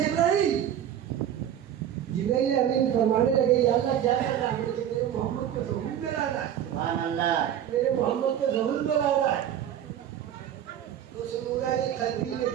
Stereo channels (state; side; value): quieter; left; 10.2 dB